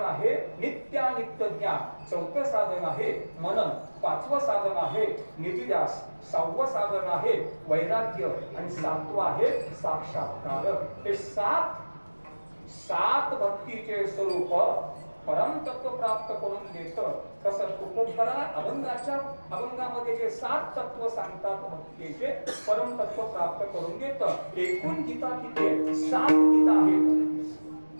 आहे नित्यानित्य ज्ञान. 4थं साधन आहे मनन. 5वं साधन आहे निधिध्यास. 6वं साधन आहे वैराग्य. आणि 7वं आहे साक्षात्कार. हे 7 भक्तीचे स्वरूप परमतत्व प्राप्त करून देतं. तसं तुकोबरा अभंगामध्ये जे 7 तत्व सांगतात भक्तीचे परमतत्व प्राप्त करून देतं. एकूण गीता किती आहेत? 7 गीता आहेत.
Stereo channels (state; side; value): inverted; both; correlation -1.00